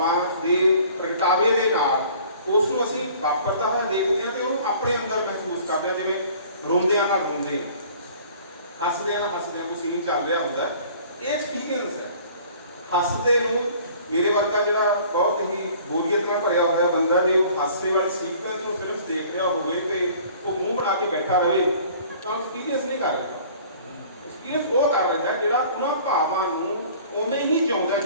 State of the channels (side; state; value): both; inverted; correlation -0.51